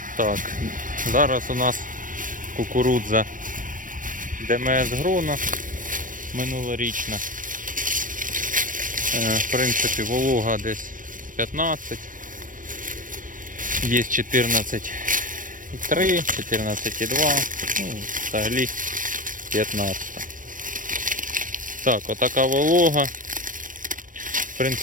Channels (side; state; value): left; late; 0.38 ms